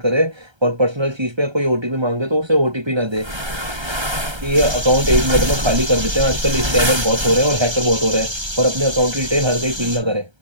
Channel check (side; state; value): left; late; 1.3 ms